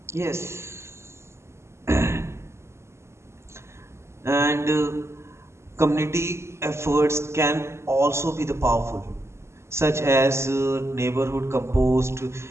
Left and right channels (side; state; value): left; late; 0.13 ms